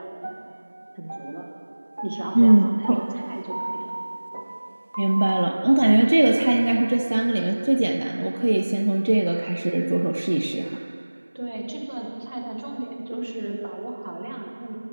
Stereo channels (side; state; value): both; inverted; correlation -1.00